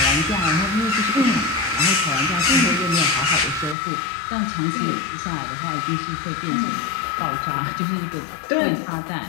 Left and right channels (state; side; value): drops out; right; at 3.8 s